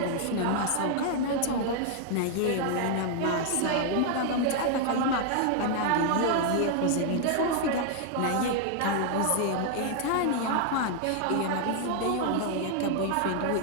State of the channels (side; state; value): both; different; correlation 0.00